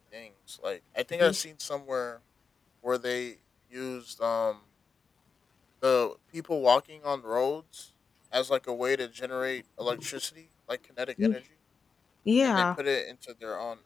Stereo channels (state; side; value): quieter; right; 5.4 dB